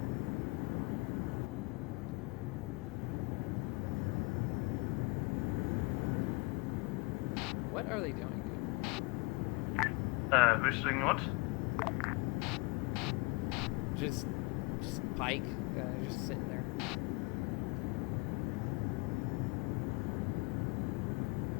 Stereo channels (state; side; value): quieter; right; 27.0 dB